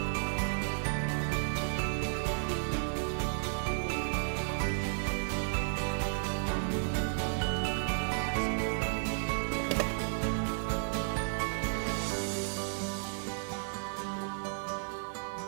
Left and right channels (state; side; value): silent; left; digital silence